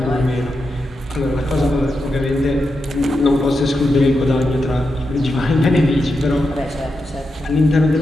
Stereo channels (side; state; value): both; normal; correlation 0.87